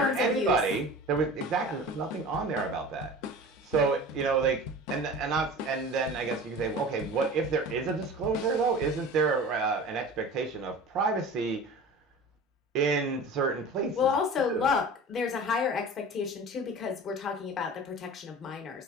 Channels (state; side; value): normal; both; correlation 0.37